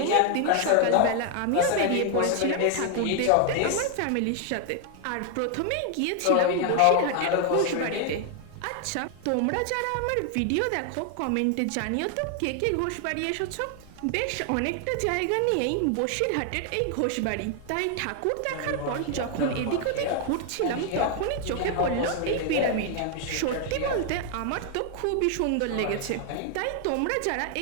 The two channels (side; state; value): both; different; correlation 0.00